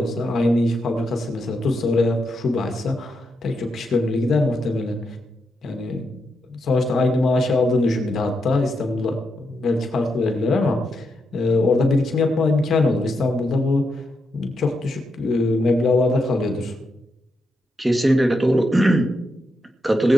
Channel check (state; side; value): normal; both; correlation 0.83